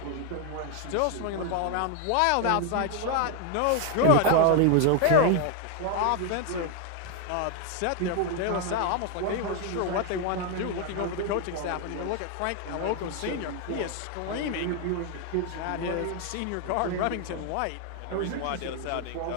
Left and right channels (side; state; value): both; different; correlation 0.00